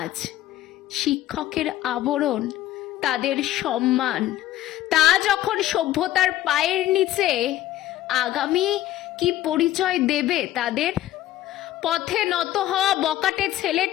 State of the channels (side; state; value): right; quieter; 13.9 dB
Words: শিক্ষকের আবরণ তাদের সম্মান, তা যখন সভ্যতার পায়ের নিচে, আগামী কি পরিচয় দেবে তাদের? পথে নত হওয়া বকাটে